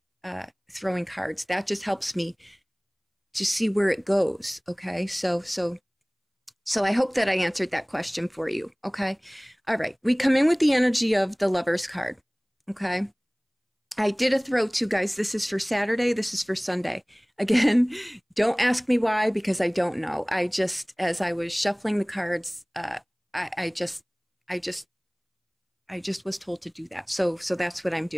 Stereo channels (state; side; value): identical; both; correlation 1.00